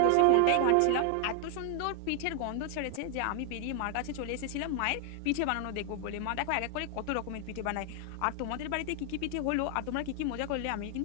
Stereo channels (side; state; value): both; different; correlation 0.00